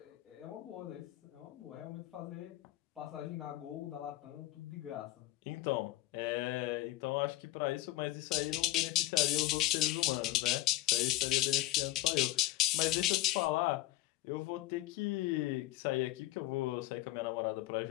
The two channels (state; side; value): quieter; right; 16.1 dB